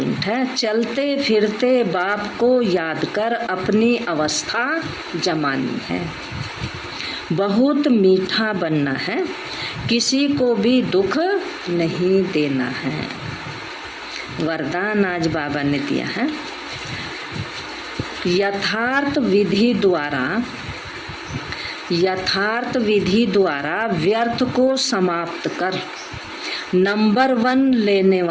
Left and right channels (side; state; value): both; identical; correlation 1.00